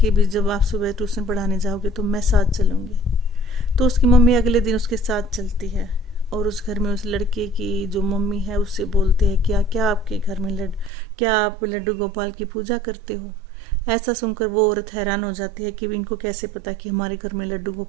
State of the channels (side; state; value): left; drops out; at 10.9 s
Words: अभी जब आप सुबह ट्यूशन पढ़ाने जाओगे तो मैं साथ चलूँगी। तो उसकी मम्मी अगले दिन उसके साथ चलती है और उस घर में उस लड़के की जो मम्मी है उससे बोलते हैं क्या क्या आपके घर में क्या आप लड्डू गोपाल की पूजा करते हो। ऐसा सुनकर वो औरत हैरान हो जाती है कि इनको कैसे पता कि हमारे घर में लड्डू